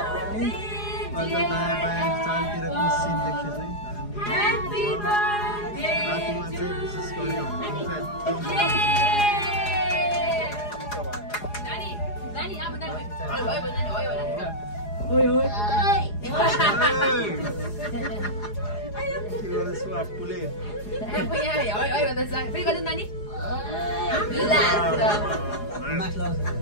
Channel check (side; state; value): right; late; 4.8 ms